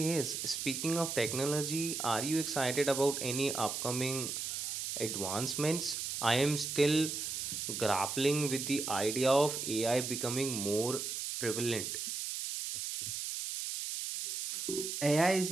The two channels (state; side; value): noise; right; hiss, 4 dB below the sound